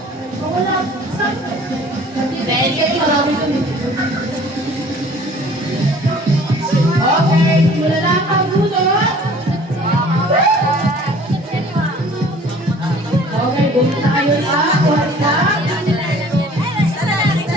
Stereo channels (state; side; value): normal; both; correlation 0.50